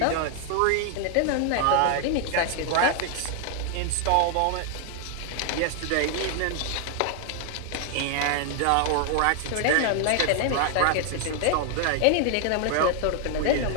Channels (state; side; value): different; both; correlation 0.00